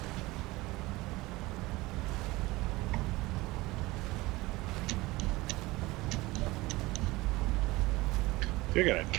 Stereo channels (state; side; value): quieter; left; 20.7 dB